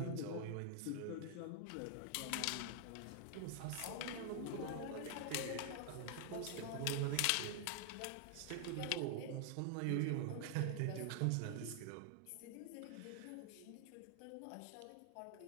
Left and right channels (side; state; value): both; different; correlation 0.00